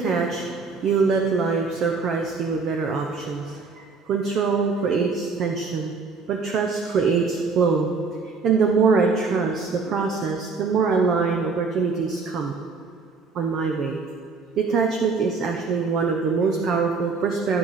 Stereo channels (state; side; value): quieter; left; 4.6 dB